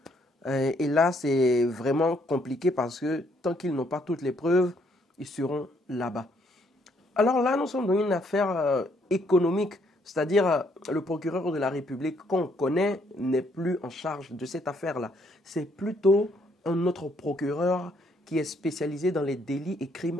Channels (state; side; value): normal; both; correlation 0.69